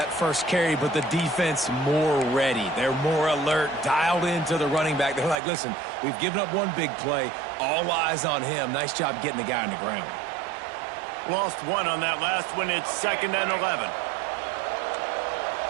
first carry, but the defense more ready. They're more alert, dialed into the running back. They're like, listen, we've given up one big play. All eyes on him. Nice job getting the guy on the ground. Lost one on that last one. It's 2nd and 11.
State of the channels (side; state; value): left; drops out; at 5.4 s